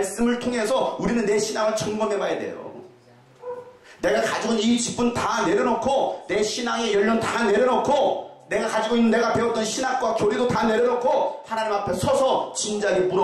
통해서 우리는 내 신앙을 점검해 봐야 돼요. 내가 가지고 있는 이 직분 다 내려놓고 내 신앙의 연륜 다 내려놓고 내가 가지고 있는 내가 배웠던 신학과 교리도 다 내려놓고 하나님 앞에 서서 진지하게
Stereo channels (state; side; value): identical; both; correlation 1.00